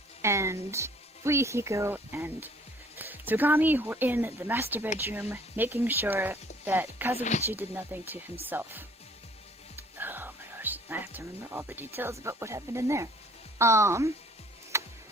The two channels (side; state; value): both; normal; correlation 0.56